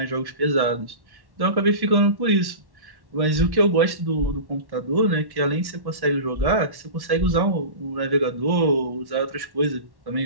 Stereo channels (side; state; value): left; late; 1.1 ms